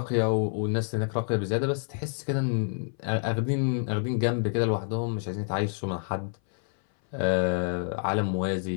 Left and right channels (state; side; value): silent; right; 57 dB below the other